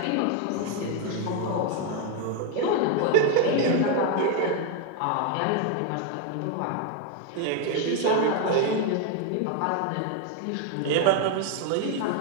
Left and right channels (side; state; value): both; different; correlation 0.01